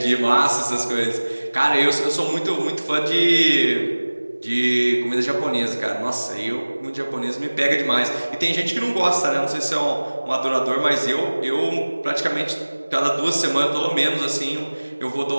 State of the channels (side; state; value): both; inverted; correlation -1.00